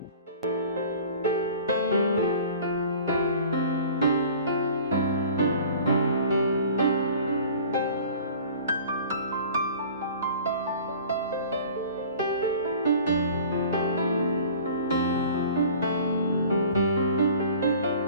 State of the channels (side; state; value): both; inverted; correlation -0.46